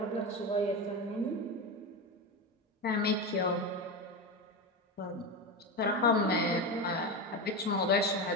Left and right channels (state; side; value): normal; both; correlation 0.18